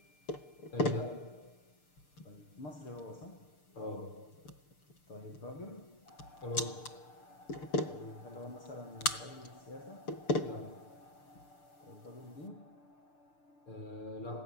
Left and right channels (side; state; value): right; late; 6.7 ms